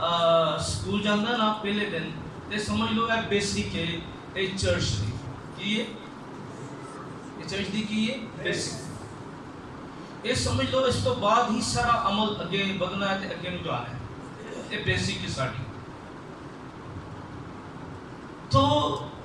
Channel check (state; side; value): identical; both; correlation 1.00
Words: اسکول جانا نا پہلے دن تے سمجھ لو ہے بیسک ہے، یہ چرچ دی کی ہے، یہ چرچ دی کی ہے بیسک، یہ سمجھ لو اس تو بعد ہی سارا عمل اگے بدنا ہے تے اگے نو جانا ہے، یہ بیسک ہے ساڈی۔ تو